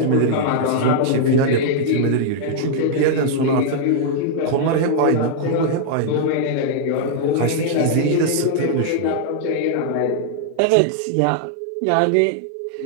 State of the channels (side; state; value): both; different; correlation -0.01